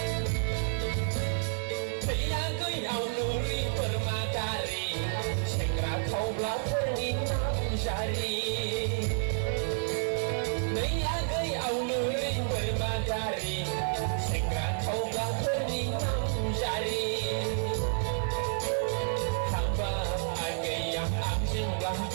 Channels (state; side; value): silent; left; 58 dB below the other